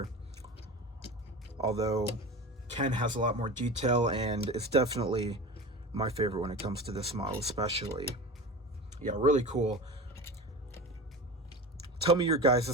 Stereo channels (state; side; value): normal; both; correlation 0.31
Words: Although Ken has a lot more detail, and it's definitely my favorite when it comes to this model especially. Yeah, really cool. Tell me your